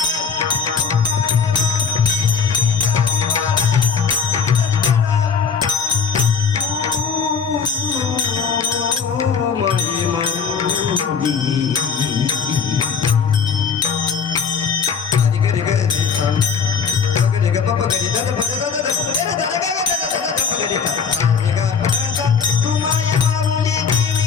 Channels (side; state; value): right; quieter; 6.2 dB